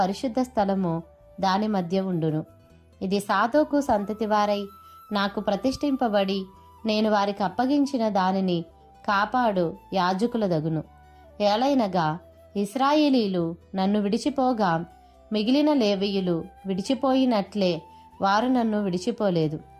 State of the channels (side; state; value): both; identical; correlation 1.00